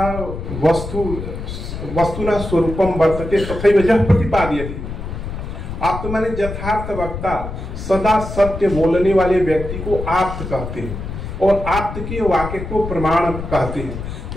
वस्तुना स्वरूपम वर्तते तथैव यः प्रतिपादयति। आप्त माने यथार्थ वक्ता, सदा सत्य बोलने वाले व्यक्ति को आप्त कहते हैं और आप्त के वाक्य को प्रमाण कहते हैं।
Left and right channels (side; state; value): left; noise; rumble, 7 dB below the sound